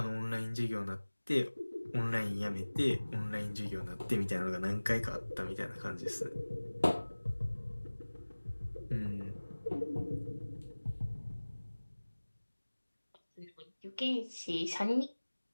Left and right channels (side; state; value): both; inverted; correlation -1.00